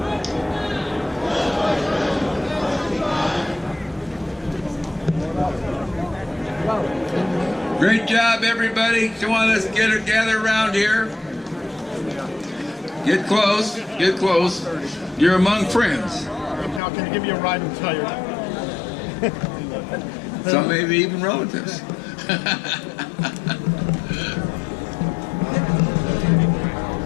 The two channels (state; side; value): drops out; right; at 16.8 s